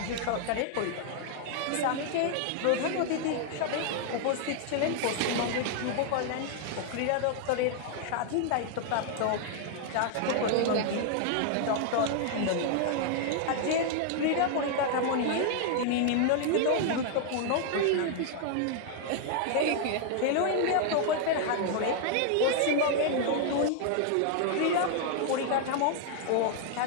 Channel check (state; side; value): different; both; correlation 0.00